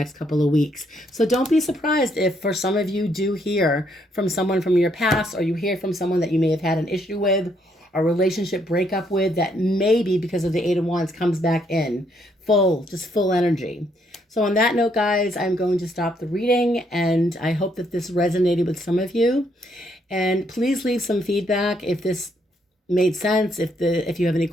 couple of weeks. So don't be surprised if for some of you do hear from someone from your past, or you hear from someone that you may have had an issue with, a relationship breakup with, that maybe because of the Eight of Wands comes back in full energy. So on that note, guys, I'm going to stop the reading, and I hope that this resonated with some of you. And please leave some feedback if this made sense, if you have any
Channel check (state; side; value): normal; both; correlation 0.72